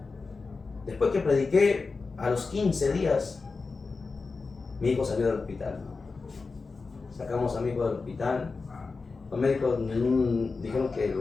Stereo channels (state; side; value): quieter; right; 4.3 dB